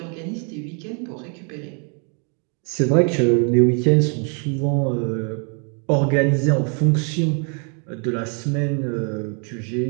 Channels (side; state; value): left; quieter; 39.7 dB